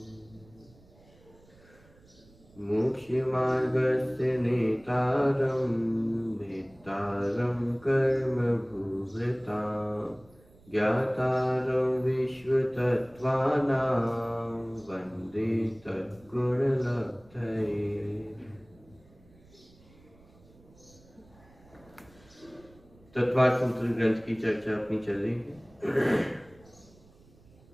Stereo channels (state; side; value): noise; right; rumble, 27 dB below the sound